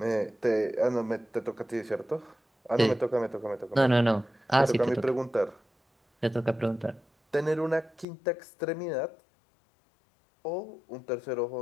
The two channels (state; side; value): drops out; right; at 8.1 s